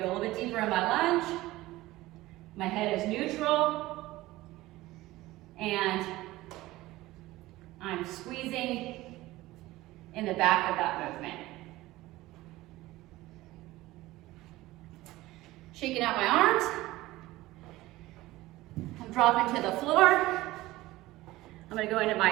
go a little bit deeper in my lunge. My head is neutral. And I'm squeezing in the back of that movement. Shaking out my arms. I'm dropping to the floor. I'm going to go into my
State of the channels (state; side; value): quieter; left; 17.9 dB